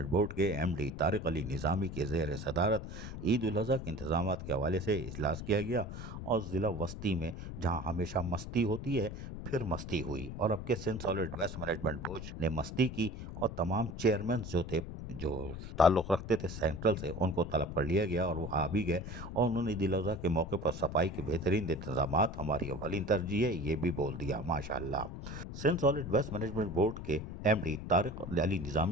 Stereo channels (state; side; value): noise; left; rumble, 9 dB below the sound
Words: board के एमडी तारिक अली निज़ामी के ज़ेर सदारत ईद उल अज़हा के इंतजाम के हवाले से इजलास किया गया और ज़िला वस्ती में जहाँ हमेशा मस्ती होती है फिर मस्ती हुई और अब के Sindh solid waste management board ने मस्ती की और तमाम चेयरमैन जो ताल्लुक़ रखते थे सेंट्रल से उनको तलब कर लिया गया और वो आ भी गए और उन्होंने ईद उल अज़हा के मौके पर सफाई के बेहतरीन इंतजामात हमारी अवलीन तरजीह है ये भी बोल दिया माशाअल्लाह। Sindh solid waste management board के एमडी तारिक अली